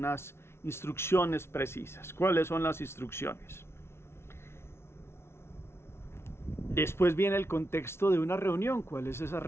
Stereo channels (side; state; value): right; late; 0.12 ms